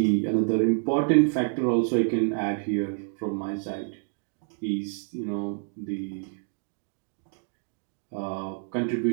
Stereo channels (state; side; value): silent; left; 60 dB below the other